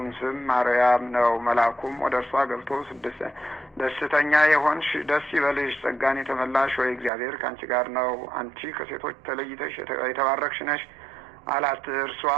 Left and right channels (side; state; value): left; drops out; at 7.1 s